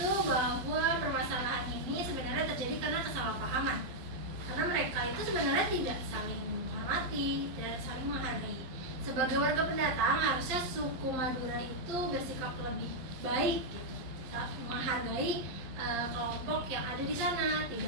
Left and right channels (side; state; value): left; late; 11 ms